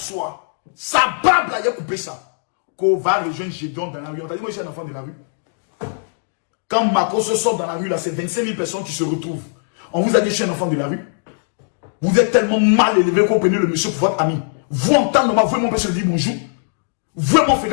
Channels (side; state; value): right; silent; digital silence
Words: Sa barbe là, il a coupé ça. Qu'on va rejoindre Gédéon dans la rue. On t'a dit, moi je suis un enfant de la rue. Quand Marcos sort dans la rue, là, c'est 25 000 personnes qui se retrouvent. On vous a dit, je suis un enfant de la rue. Vous êtes tellement mal élevé qu'on prenez le monsieur pour votre ami. Vous entendez, vous et mon père se dire bonjour. Vous et mon frère